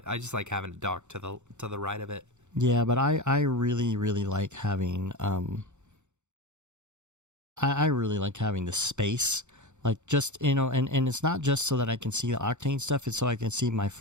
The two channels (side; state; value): left; late; 0.84 ms